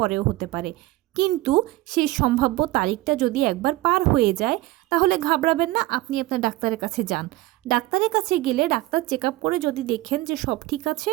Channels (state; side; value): quieter; left; 18.2 dB